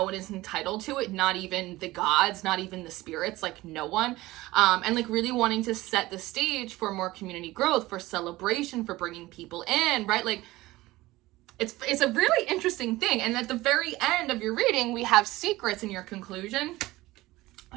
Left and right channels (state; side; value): quieter; left; 18.6 dB